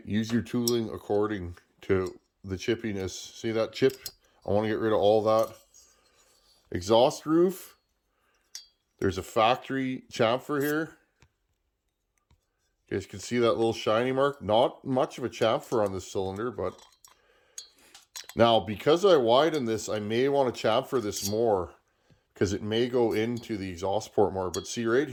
use your tooling according to the chippiness. See that chip? I want to get rid of all that. Exhaust roof. There's a factory chamfer here. You guys can see that little shiny mark. Not much of a chamfer on this cylinder, but now because I widen this, I may want to chamfer this more because it may go into the exhaust port more. But see right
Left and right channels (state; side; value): identical; both; correlation 1.00